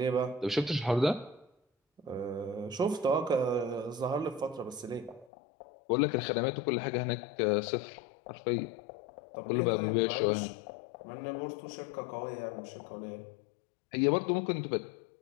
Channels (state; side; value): drops out; right; at 5.2 s